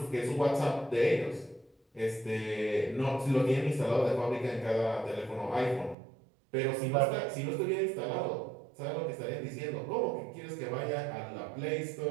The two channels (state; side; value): drops out; left; at 6.0 s